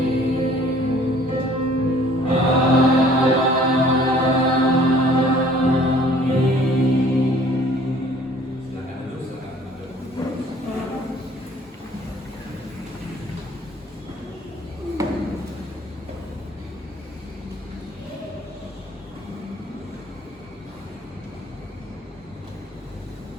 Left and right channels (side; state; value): both; normal; correlation 0.55